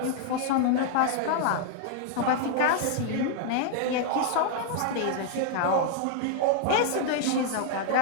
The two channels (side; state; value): both; different; correlation 0.00